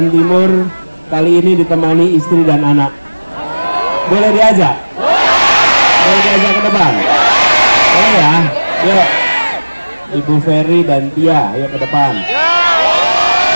Timur, kali ini ditemani istri dan anak. Boleh diajak? Boleh diajak ke depan? Boleh ya? Yuk, Ibu Ferry dan Tia, ayo ke depan.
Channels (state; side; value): inverted; both; correlation -1.00